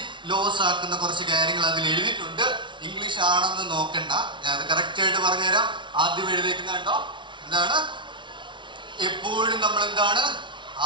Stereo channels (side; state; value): left; late; 0.24 ms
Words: ലോസ് ആക്കുന്ന കുറച്ച് കാര്യങ്ങൾ അതിൽ എഴുതിയിട്ടുണ്ട്. ഇംഗ്ലീഷ് ആണെന്ന് നോക്കണ്ട, ഞാൻ അത് കറക്റ്റ് ആയിട്ട് പറഞ്ഞുതരാം. ആദ്യം എഴുതിയിരിക്കുന്ന കണ്ടോ, എന്താണ്? എപ്പോഴും നമ്മൾ എന്താണ്